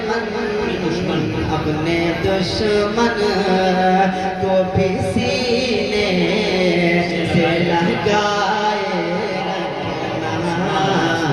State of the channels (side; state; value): both; identical; correlation 1.00